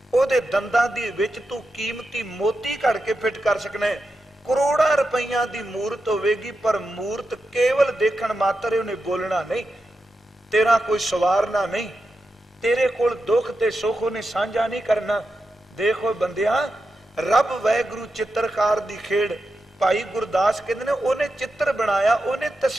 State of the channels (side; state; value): both; normal; correlation 0.89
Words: ਉਹਦੇ ਦੰਦਾਂ ਦੀ ਵਿੱਚ ਤੂੰ ਕੀਮਤੀ ਮੋਤੀ ਘੜ ਕੇ ਫਿੱਟ ਕਰ ਸਕਣਾ। ਕਰੋੜਾਂ ਰੁਪਈਆਂ ਦੀ ਮੂਰਤ ਹੋਵੇਗੀ, ਪਰ ਮੂਰਤ ਕੇਵਲ ਦੇਖਣ ਮਾਤਰ, ਉਹਨੇ ਬੋਲਣਾ ਨਹੀਂ, ਤੇਰਾ ਕੋਈ ਸਵਾਰਨਾ ਨਹੀਂ, ਤੇਰੇ ਕੋਲ ਦੁੱਖ ਤੇ ਸੁੱਖ ਉਹਨੇ ਸਾਂਝਾ ਨਹੀਂ ਕਰਨਾ। ਦੇਖੋ ਬੰਦਿਆ, ਰੱਬ ਵਾਹਿਗੁਰੂ ਚਿੱਤਰਕਾਰ ਦੀ ਖੇਡ। ਭਾਈ ਗੁਰਦਾਸ ਕਹਿੰਦੇ ਨੇ ਉਹਨੇ ਚਿੱਤਰ ਬਣਾਇਆ, ਉਹਨੇ